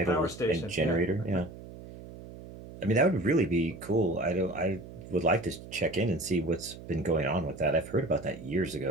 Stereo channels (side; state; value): right; noise; hum, 15 dB below the sound